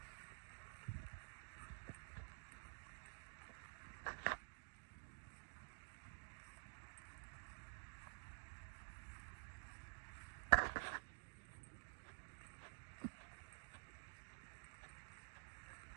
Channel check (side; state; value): left; silent; digital silence